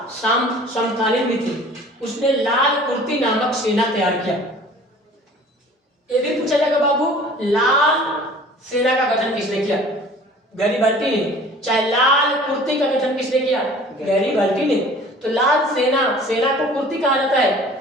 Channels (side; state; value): both; normal; correlation 0.47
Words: समकालीन भी थे। उसने लाल कुर्ती नामक सेना तैयार किया। ये भी पूछा जाएगा बाबू, लाल सेना का गठन किसने किया? गैरिबाल्दी ने। चाहे लाल कुर्ती का गठन किसने किया? गैरिबाल्दी ने। तो लाल सेना को कुर्ती कहा जाता है।